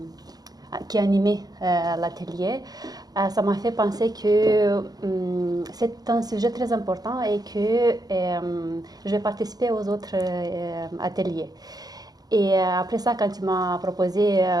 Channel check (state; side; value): late; left; 0.19 ms